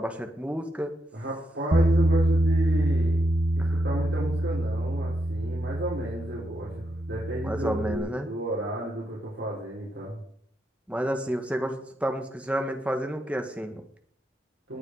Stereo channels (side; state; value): both; normal; correlation 0.82